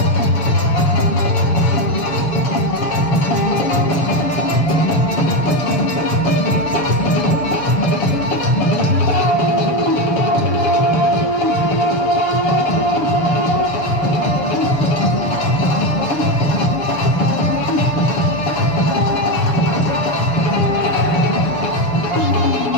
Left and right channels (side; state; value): right; late; 7.0 ms